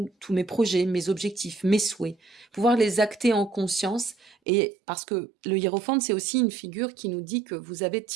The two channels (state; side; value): drops out; left; at 4.4 s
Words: mes projets, mes objectifs, mes souhaits, pouvoir les acter en conscience. Et parce que le hiérophante, c'est aussi une figure qui nous dit que vous avez